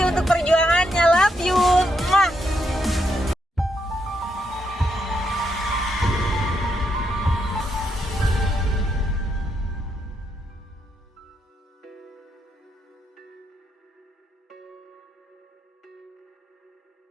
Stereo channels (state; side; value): normal; both; correlation 0.79